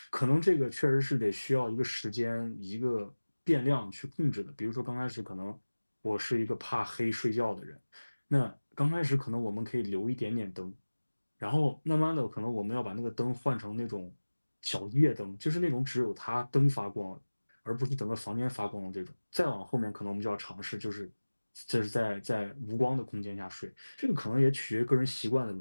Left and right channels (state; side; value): inverted; both; correlation -1.00